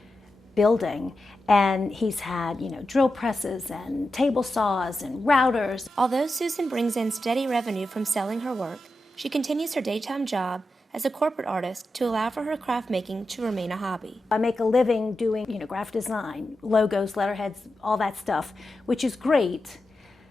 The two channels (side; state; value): both; normal; correlation 0.90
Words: building, and he's had, drill presses and table saws and routers. Although Susan brings in steady revenue from selling her work, she continues her daytime job as a corporate artist to allow for her craft making to remain a hobby. I make a living doing, graphic design, logos, letterheads, all that stuff, which is great.